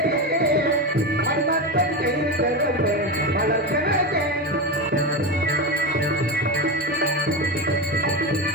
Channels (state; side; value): normal; both; correlation 0.17